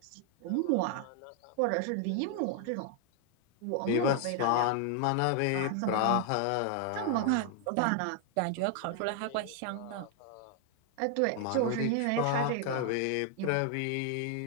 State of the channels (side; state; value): both; different; correlation 0.00